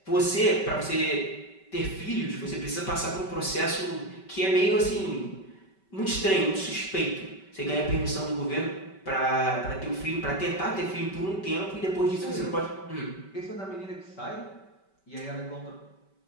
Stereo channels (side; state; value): right; late; 5.2 ms